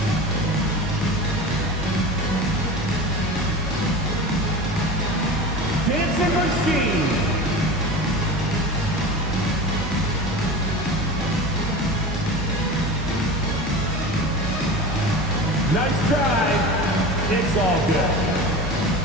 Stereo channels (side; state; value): both; normal; correlation 0.31